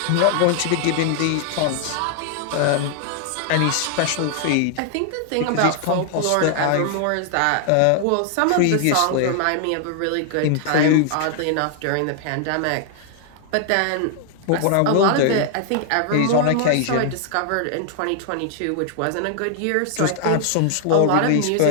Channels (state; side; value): different; both; correlation 0.00